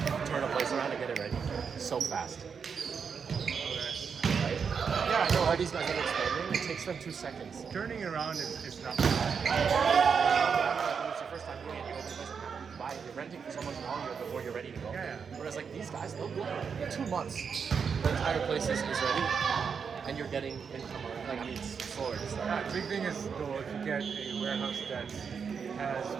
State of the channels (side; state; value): left; quieter; 6.3 dB